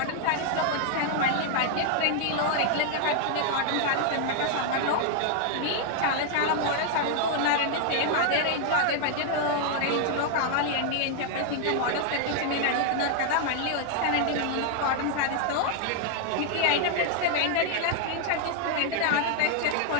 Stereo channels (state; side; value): different; both; correlation 0.00